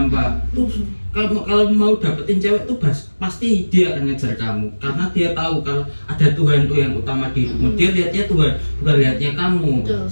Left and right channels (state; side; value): inverted; both; correlation -1.00